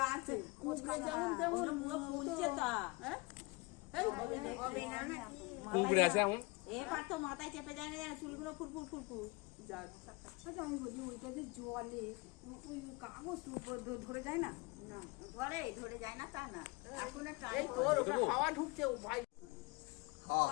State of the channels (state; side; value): quieter; right; 25.6 dB